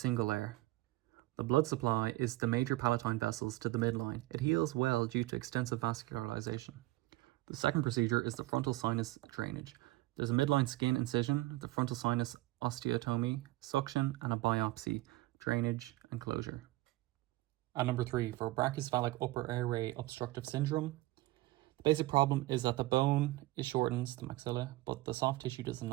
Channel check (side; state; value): left; quieter; 19.0 dB